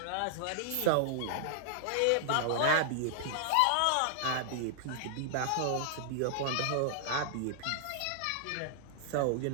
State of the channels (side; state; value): both; different; correlation -0.01